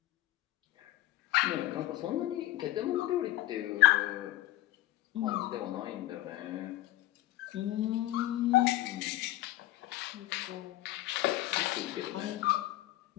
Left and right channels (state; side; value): quieter; right; 16.0 dB